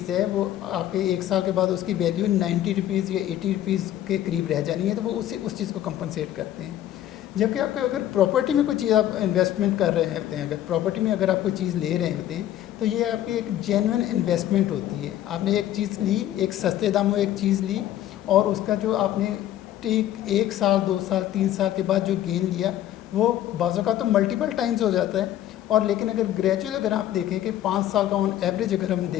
है वो आपके 1 साल के बाद उसकी वैल्यू 90 रुपीज़ या 80 रुपीज़ के करीब रह जानी है, तो वो उस चीज़ को कंपनसेट करते हैं। जबकि आपको अगर प्रॉपर्टी में कोई चीज़ आप इन्वेस्टमेंट कर रहे होते हैं, अगर प्रॉपर्टी में अगर आप कोई चीज़ ले रहे होते हैं, तो ये आपकी एक जेन्युइन इन्वेस्टमेंट होती है। आपने एक चीज़ ली, एक सस्ते दामों एक चीज़ ली, और उसका जो आपने ठीक 1 साल 2 साल 3 साल के बाद जो गेन लिया, वो बाज़ों का तो मल्टीपल टाइम्स हो जाता है। और लेकिन अगर ग्रेजुअल अगर आप देखें कि 5 साल का ऑन एवरेज अगर हम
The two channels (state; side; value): quieter; right; 12.4 dB